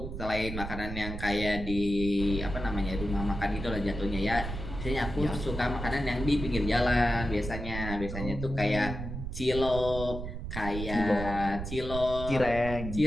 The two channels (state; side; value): noise; right; rumble, 7 dB below the sound